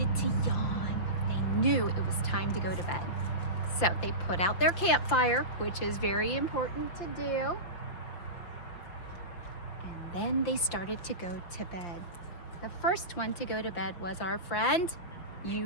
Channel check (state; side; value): late; right; 5.8 ms